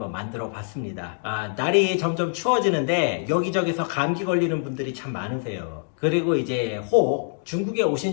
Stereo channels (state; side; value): silent; right; digital silence